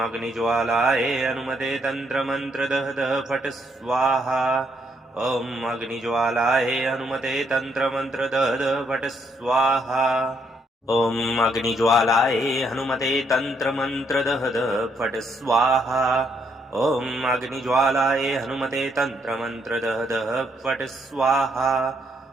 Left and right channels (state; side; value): normal; both; correlation 0.73